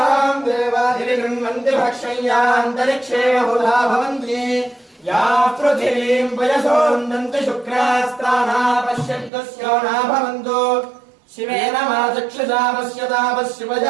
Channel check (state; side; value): drops out; left; at 9.3 s